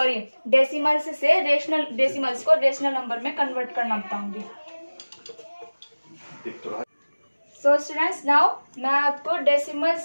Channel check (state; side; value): inverted; both; correlation -1.00